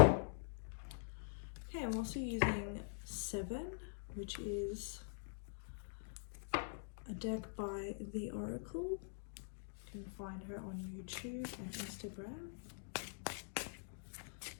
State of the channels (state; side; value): silent; right; digital silence